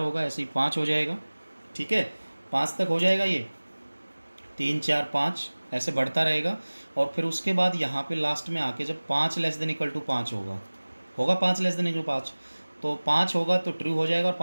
ऐसे ही 5 हो जाएगा। ठीक है, 5 तक हो जाएगा, ये 3 4 5 ऐसे बढ़ता रहेगा, और फिर उसके बाद यहाँ पे लास्ट में आके जब 5 लेस देन इक्वल टू 5 होगा, 5 लेस देन इक्वल टू 5, तो 5 होगा तो ट्रू हो जाएगा, और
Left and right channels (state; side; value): inverted; both; correlation -1.00